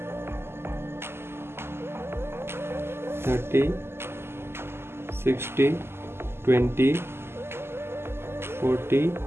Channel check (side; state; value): left; late; 0.12 ms